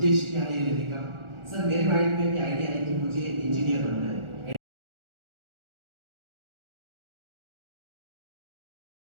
क्या है ये लेने का? सर मेरे माइंड में भी आइडिया है कि मुझे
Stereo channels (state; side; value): late; left; 1.4 ms